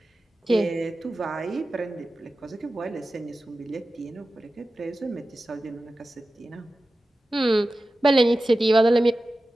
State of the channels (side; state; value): both; normal; correlation 0.94